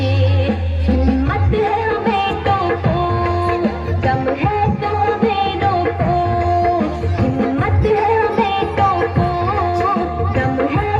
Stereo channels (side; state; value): both; identical; correlation 1.00